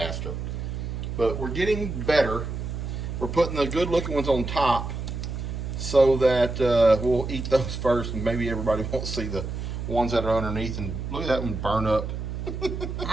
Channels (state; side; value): noise; right; hum, 5 dB below the sound